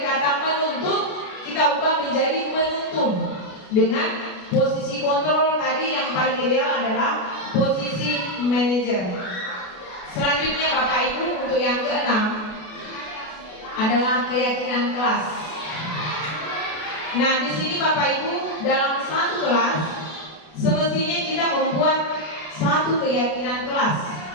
kata menuntut kita ubah menjadi menuntun dengan posisi kontrol tadi yang paling ideal adalah posisi manajer. Selanjutnya Bapak Ibu, untuk yang keenam adalah keyakinan kelas. Nah, di sini Bapak Ibu, dalam satu kelas semestinya kita membuat satu keyakinan kelas.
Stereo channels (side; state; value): right; late; 33 ms